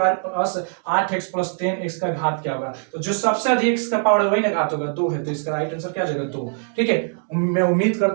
plus 8x plus 10x का घात क्या होगा। तो जो सबसे अधिक x का पावर है वही ना घात होगा, 2 है, तो इसका राइट आंसर क्या जाएगा 2, ठीक है। मैं उम्मीद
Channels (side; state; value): left; silent; 58 dB below the other